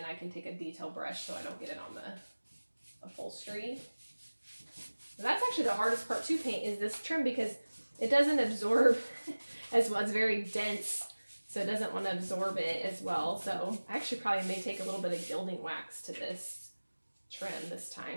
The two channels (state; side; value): inverted; both; correlation -1.00